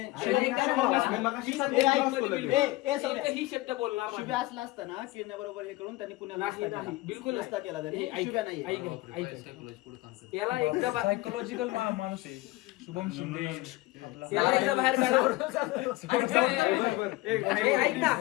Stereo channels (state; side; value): quieter; right; 19.4 dB